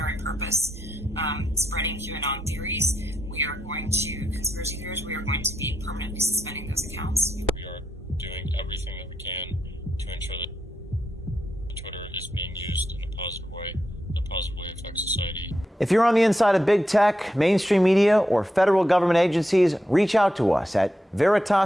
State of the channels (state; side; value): normal; both; correlation 0.84